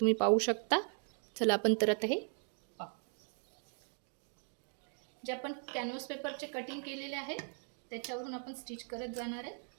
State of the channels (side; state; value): left; silent; 52 dB below the other